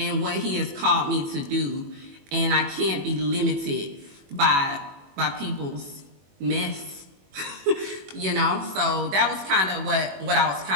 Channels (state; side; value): late; left; 21 ms